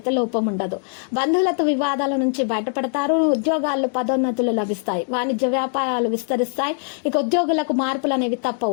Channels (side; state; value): right; silent; 59 dB below the other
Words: లోపం ఉండదు. బంధువులతో వివాదాల నుంచి బయటపడతారు. ఉద్యోగాల్లో పదోన్నతులు లభిస్తాయి. వాణిజ్య వ్యాపారాలు విస్తరిస్తాయి. ఇక ఉద్యోగులకు మార్పులు అనేవి